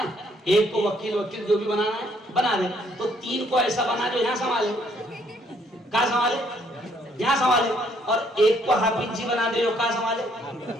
ایک کو وکیل جو بھی بنانا ہے بنا دے، تو 3 کو ایسا بنا جو یہاں سنبھالے، کہاں سنبھالے، یہاں سنبھالے، اور ایک کو حافظ جی بنا دے جو کہاں سنبھالے،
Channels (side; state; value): both; normal; correlation 0.67